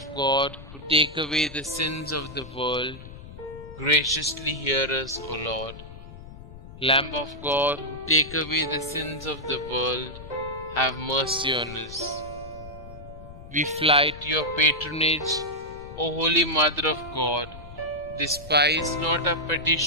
God, who take away the sins of the world, graciously hear us, O Lord. Lamb of God, who take away the sins of the world, have mercy on us. We fly to your patronage, O Holy Mother of God. Despise not our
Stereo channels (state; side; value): noise; left; rumble, 15 dB below the sound